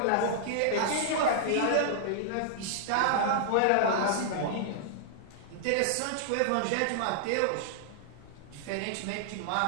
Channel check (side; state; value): both; different; correlation -0.01